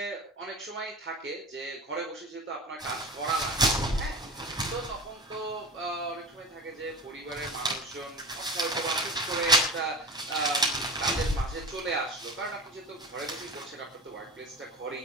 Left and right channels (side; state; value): both; normal; correlation 0.34